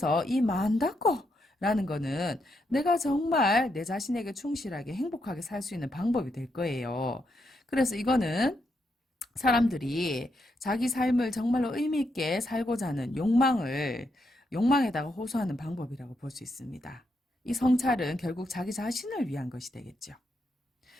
이 만다고 라는 거는 내가 정말 내 자신에게 충실하게 행복하게 살 수 있는 방법이 될 거예요. 그래서 이거는 사람들이 자기 삶을 정말로 의미 있게 살고자 하는 욕망에다가 호소하는 방법이라고 볼 수 있습니다. 이 성찰은 결국 자기 자신을 위한 것이 되겠죠.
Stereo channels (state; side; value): normal; both; correlation 0.80